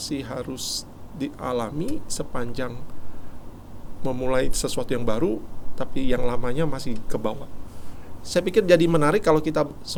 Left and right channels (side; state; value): both; identical; correlation 1.00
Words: harus dialami sepanjang memulai sesuatu yang baru, tapi yang lamanya masih ke bawah. Saya pikir jadi menarik kalau kita